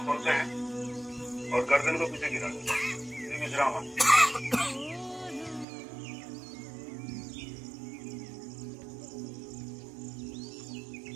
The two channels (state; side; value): drops out; left; at 5.7 s